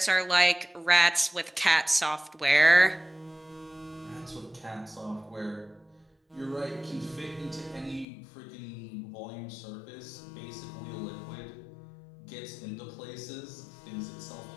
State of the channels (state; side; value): drops out; right; at 8.1 s